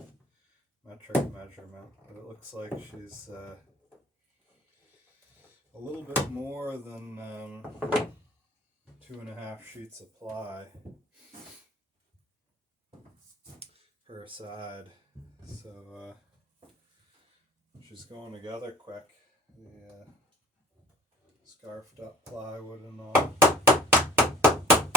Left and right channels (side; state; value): both; normal; correlation 0.49